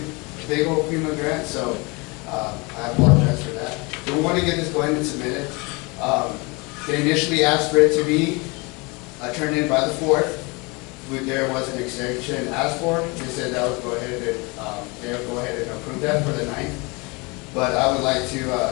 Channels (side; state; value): right; quieter; 27.6 dB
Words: a big old FEMA grant, so I apologize for that. So we want to get this going and submitted. They initially asked for it to be turned in by the 4th. There was an extension asked for. They said that would go ahead and they'll go ahead and approve that for the 9th. But I would like to,